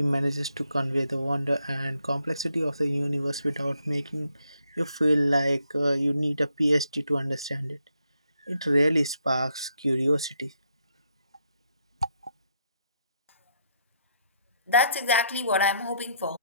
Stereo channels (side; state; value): both; inverted; correlation -0.75